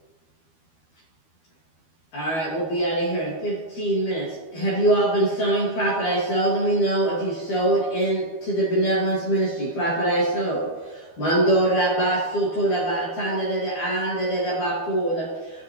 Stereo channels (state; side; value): late; right; 12 ms